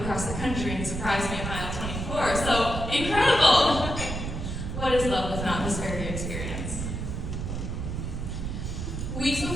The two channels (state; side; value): noise; right; rumble, 4 dB below the sound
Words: the country and surprised me at mile 24, so incredible! What is love if not this very experience? Weeks